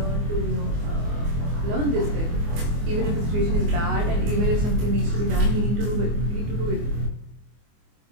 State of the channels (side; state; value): left; late; 24 ms